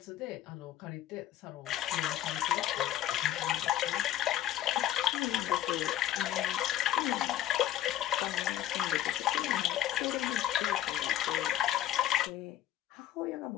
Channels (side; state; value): right; quieter; 12.3 dB